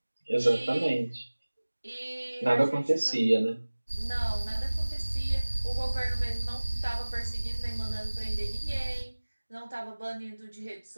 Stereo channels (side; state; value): both; inverted; correlation -1.00